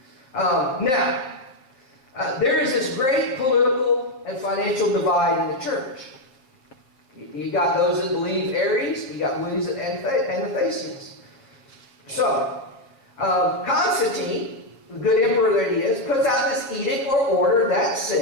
There is this great political and financial divide in the church. You got those that believe Aries, you got believers that Anastasius. So, Constantine, the good emperor that he is, puts out this edict or order that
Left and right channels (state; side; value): late; right; 7.5 ms